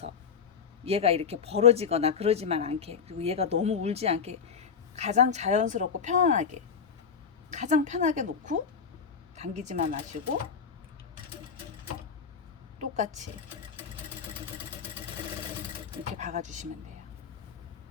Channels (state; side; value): quieter; right; 6.5 dB